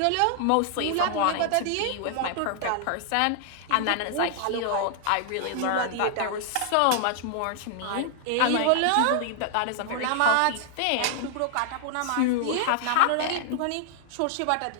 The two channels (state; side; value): different; both; correlation -0.01